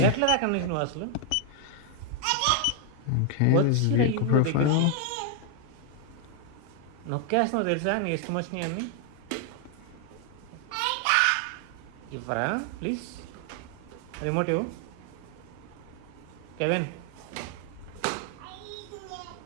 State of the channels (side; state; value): both; different; correlation 0.00